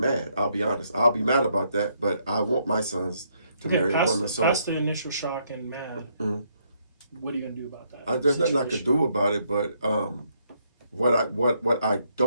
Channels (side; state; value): both; inverted; correlation -0.73